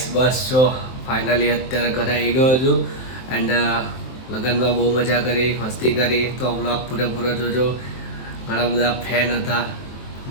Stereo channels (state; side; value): late; right; 23 ms